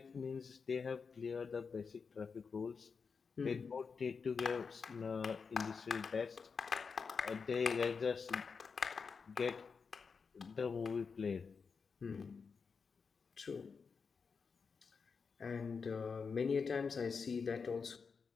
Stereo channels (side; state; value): right; quieter; 5.4 dB